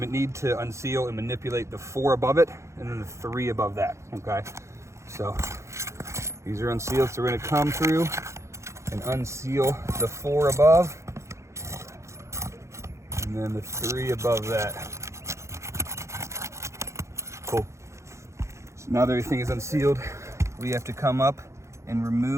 to unseal and manipulate the 4 above it and then the 3 above that, okay? So these are unsealed, so we're gonna come through and unseal the 4 above and then the 3 above that. Cool. So now that everything is unsealed, we have to come up and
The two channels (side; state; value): left; late; 0.14 ms